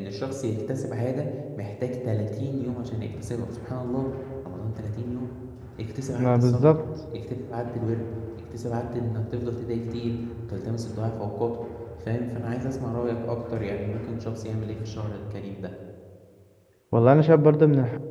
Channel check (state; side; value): identical; both; correlation 1.00